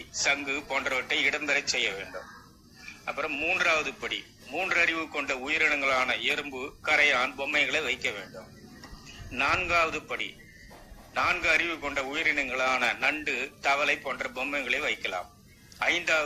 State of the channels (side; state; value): both; identical; correlation 1.00